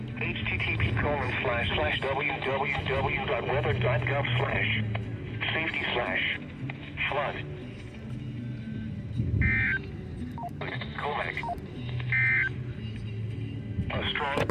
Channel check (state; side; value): identical; both; correlation 1.00